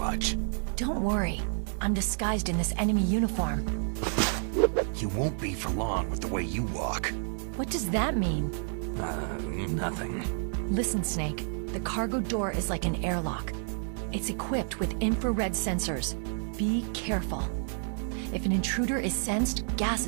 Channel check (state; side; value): silent; left; 56 dB below the other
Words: Don't worry. I'm disguised in this enemy uniform. You won't be for long with the way you walk. What does that mean? Nothing. Listen, Snake. The cargo door is like an airlock. It's equipped with infrared sensors. Be careful. If an intruder is sensed, gas